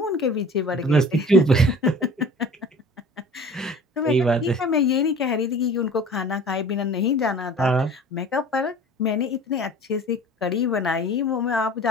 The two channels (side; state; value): both; normal; correlation 0.43